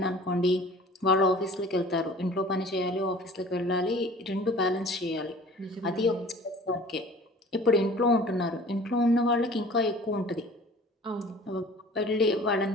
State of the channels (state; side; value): normal; both; correlation 0.46